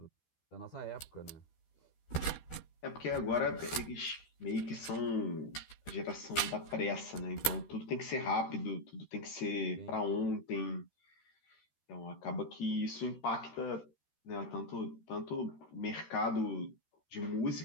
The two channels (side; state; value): right; late; 13 ms